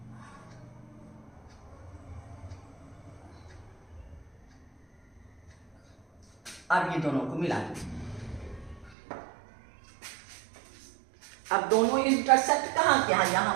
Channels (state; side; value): drops out; left; at 9.0 s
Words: अब ये दोनों को मिला दीजिए। अब दोनों इंटरसेक्ट कहाँ किया,